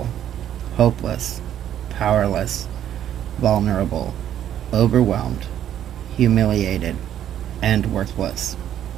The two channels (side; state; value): left; quieter; 10.8 dB